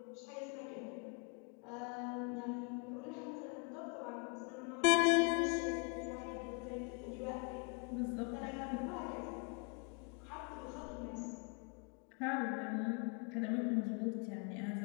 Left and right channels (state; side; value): quieter; right; 34.1 dB